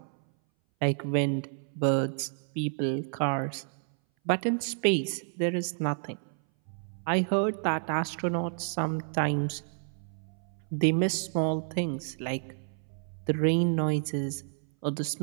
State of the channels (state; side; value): silent; left; 58 dB below the other